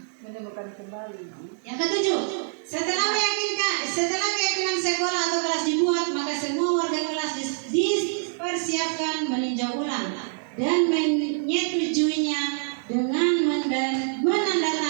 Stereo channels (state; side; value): silent; left; digital silence